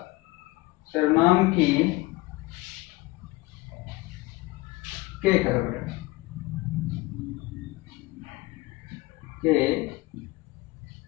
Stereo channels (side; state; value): right; quieter; 21.2 dB